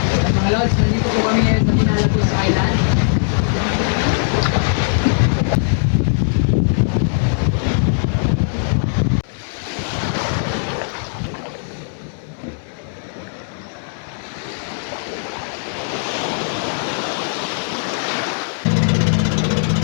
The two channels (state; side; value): silent; right; digital silence